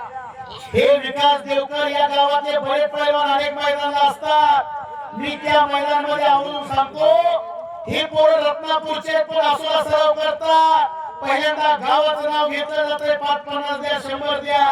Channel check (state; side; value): identical; both; correlation 1.00